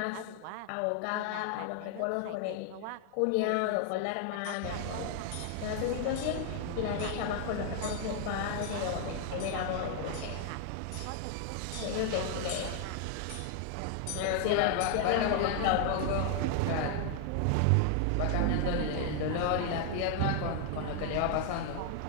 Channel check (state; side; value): different; both; correlation 0.00